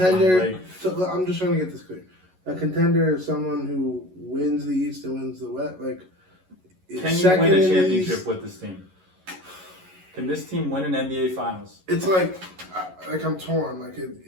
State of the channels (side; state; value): left; late; 11 ms